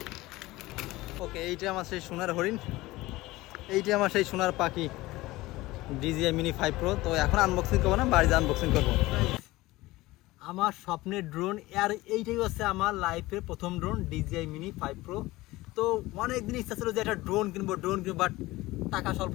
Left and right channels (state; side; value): quieter; right; 19.2 dB